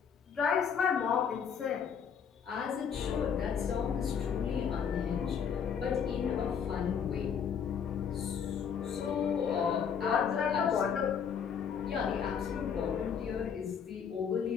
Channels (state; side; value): quieter; right; 7.2 dB